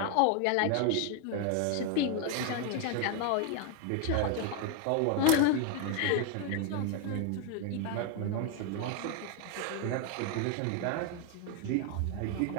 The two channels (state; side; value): different; both; correlation 0.01